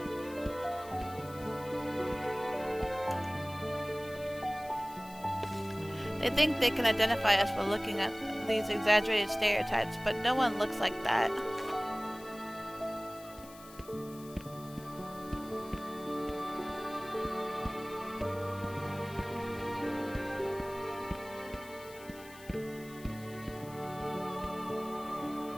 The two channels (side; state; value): left; noise; hiss, 19 dB below the sound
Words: They think they can identify us by looking at these exaggerated stereotypes, but no one looks like that.